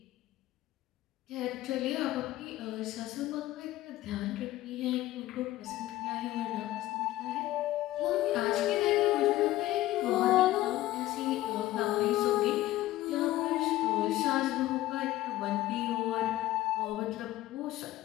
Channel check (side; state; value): right; quieter; 15.7 dB